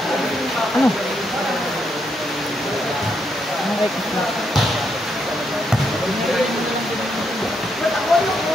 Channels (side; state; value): both; normal; correlation 0.78